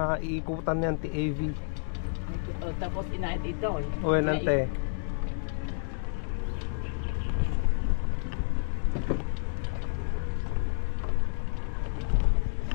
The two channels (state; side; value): silent; right; digital silence